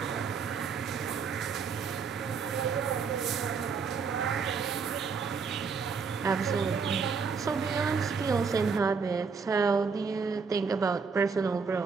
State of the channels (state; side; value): quieter; left; 5.5 dB